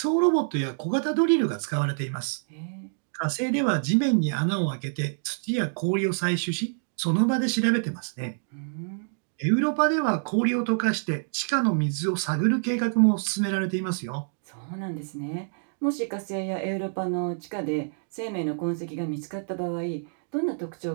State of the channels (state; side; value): silent; left; digital silence